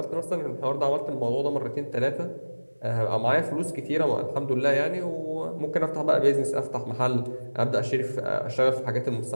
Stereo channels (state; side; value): inverted; both; correlation -1.00